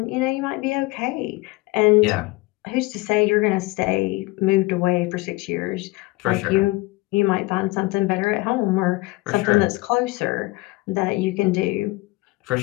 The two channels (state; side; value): quieter; right; 22.0 dB